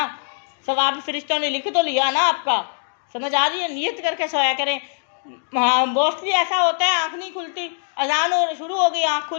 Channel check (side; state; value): right; silent; digital silence